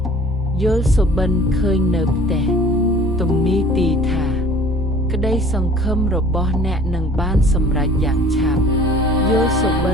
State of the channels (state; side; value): normal; both; correlation 0.49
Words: យល់សុបិនឃើញនៅផ្ទះទំនេរទីថាក្តីសង្ឃឹមរបស់អ្នកនឹងបានសម្រេចយ៉ាងឆាប់យល់សុបិ